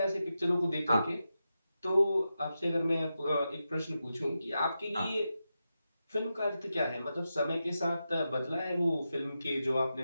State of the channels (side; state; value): both; inverted; correlation -0.90